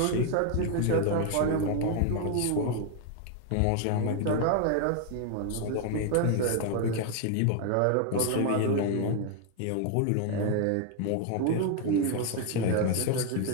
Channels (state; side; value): different; both; correlation 0.01